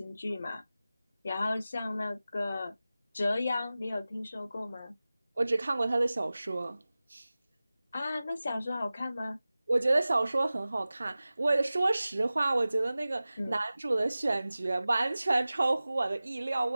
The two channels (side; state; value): both; inverted; correlation -0.97